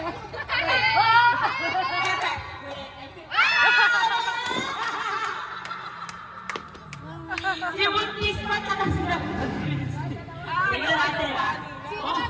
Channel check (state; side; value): identical; both; correlation 1.00